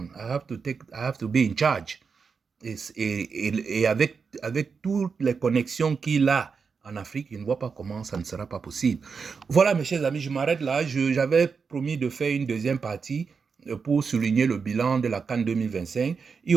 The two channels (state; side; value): quieter; left; 5.5 dB